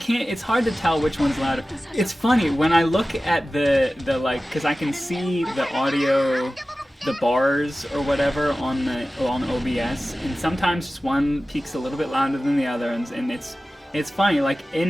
It's hard to tell which one's louder. It's funny when I look at the like, because I can see the audio, the bars or whatever on OBS, and sometimes one peaks a little bit louder than the other, and it's funny. Like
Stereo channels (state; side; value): normal; both; correlation 0.96